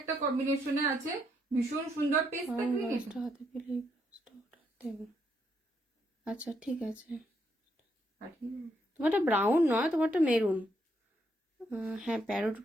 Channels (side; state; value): both; normal; correlation 0.76